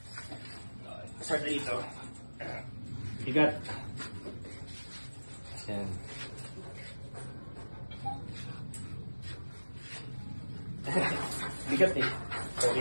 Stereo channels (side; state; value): both; inverted; correlation -1.00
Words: Start na dito. Bigat. Yan. Bigat eh.